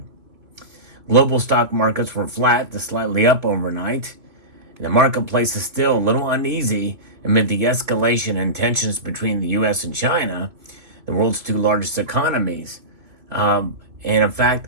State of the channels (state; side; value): late; left; 2.8 ms